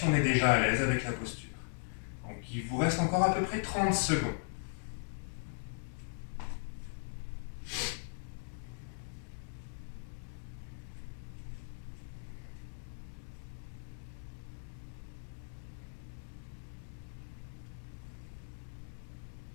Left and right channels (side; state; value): right; silent; digital silence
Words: on est déjà à l'aise avec la posture. Donc il vous reste encore à peu près 30 secondes.